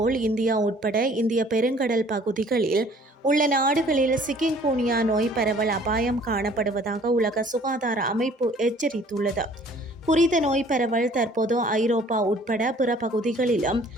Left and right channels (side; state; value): both; normal; correlation 0.55